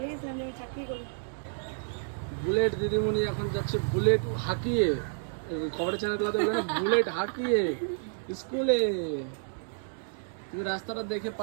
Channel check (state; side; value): silent; left; digital silence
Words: গেছিলাম যে আমি চাকরি করি। বুলেট দিদিমণি এখন যাচ্ছে বুলেট হাঁকিয়ে, খবরের চ্যানেলগুলোতে বলে না, বুলেট হাঁকিয়ে স্কুলে। তুমি রাস্তাটা দেখে